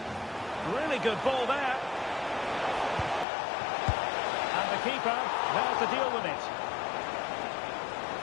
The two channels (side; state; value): right; drops out; at 3.2 s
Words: Really good ball there. And the keeper there to deal with it.